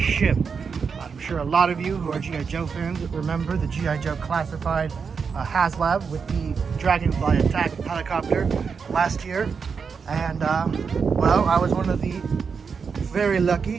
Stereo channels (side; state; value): left; quieter; 5.8 dB